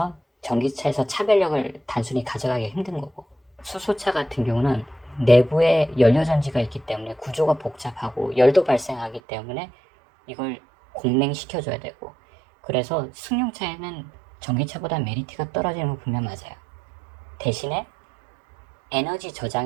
전기차에서 차별력을 단순히 가져가기 힘든 거고, 수소차 같은 경우는 내부에 연료전지가 있기 때문에 구조가 복잡하고 열도 발생하기 때문에 이걸 공냉시켜줘야 되고, 그래서 승용차에는 전기차보다 메리트가 떨어지는 건 분명 맞아요. 대신에 에너지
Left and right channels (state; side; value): drops out; left; at 9.2 s